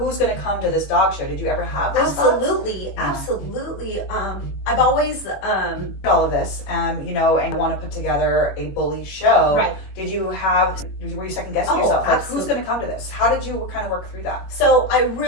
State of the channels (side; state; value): right; late; 21 ms